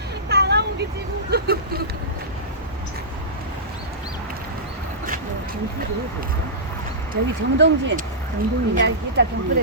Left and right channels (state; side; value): normal; both; correlation -0.17